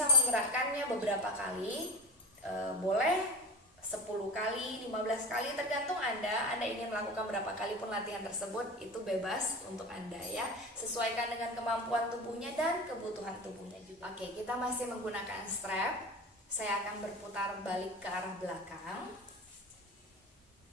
menggerakkannya beberapa kali. Boleh 10 kali, 15 kali, tergantung Anda ingin melakukan berapa kali pun latihan tersebut, itu bebas untuk Anda ya. Sesuaikan dengan kemampuan tubuhnya dan kebutuhan tubuhnya juga. Oke, kita masih menggunakan strap. Saya akan berputar balik ke arah belakang.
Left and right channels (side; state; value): both; normal; correlation 0.32